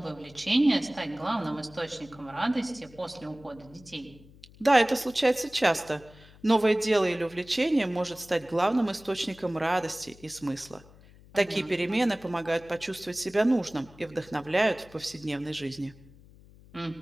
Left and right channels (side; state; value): left; noise; hum, 23 dB below the sound